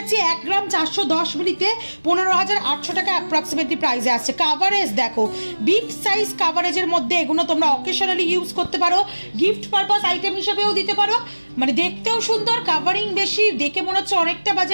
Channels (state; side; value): inverted; both; correlation -1.00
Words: 1 গ্রাম 410 মিলিতে 15,800 টাকা অ্যাপ্রক্সিমেটলি প্রাইসে আসছে। কাভারেজ দেখো, বিগ সাইজ কাভারেজের মধ্যে এগুলো তোমরা অকেশনালি ইউজ করতে পারো, গিফট পারপাস আইটেম হিসেবেও দিতে পারো, মানে দেখতেও সুন্দর, কাভারিং বেশি, দেখে মনে হচ্ছে অনেকটা